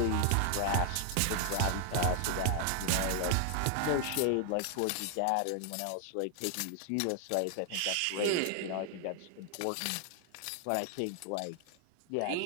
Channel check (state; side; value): different; both; correlation 0.00